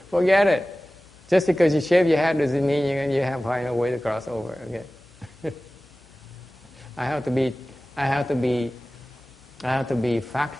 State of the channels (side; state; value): left; noise; hum, 29 dB below the sound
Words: forget it. Just because you shave your head doesn't mean you have to find a way to cross over. Okay. I have to be